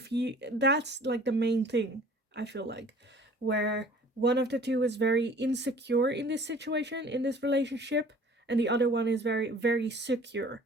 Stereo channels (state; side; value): normal; both; correlation 0.50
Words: you, that's like the main thing, I feel like, where one of the two is very insecure in this situation, in this relationship, and the other one is very, very secure